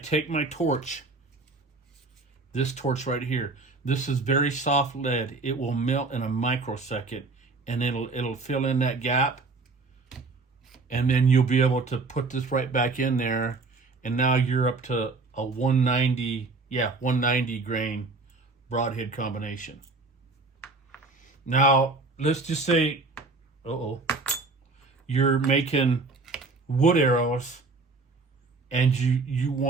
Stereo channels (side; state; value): left; quieter; 3.7 dB